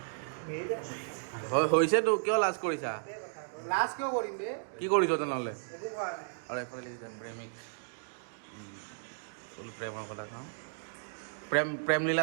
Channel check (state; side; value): silent; left; digital silence